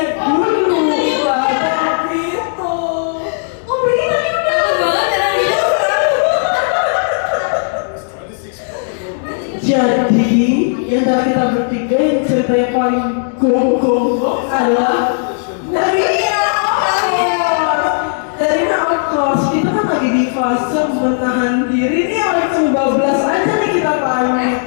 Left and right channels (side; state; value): right; silent; digital silence